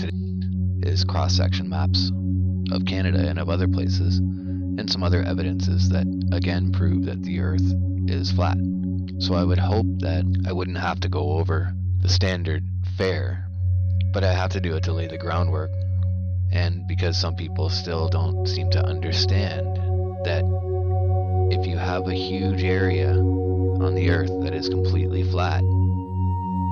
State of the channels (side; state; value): both; identical; correlation 1.00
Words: is cross-section maps of Canada and of other places, and some other evidences that again prove that the Earth is flat. So I would hope that I wouldn't have to go over the standard fare, but I have to do it to lay the groundwork, and because some people still don't seem to understand that if you have a huge area on the Earth that is completely flat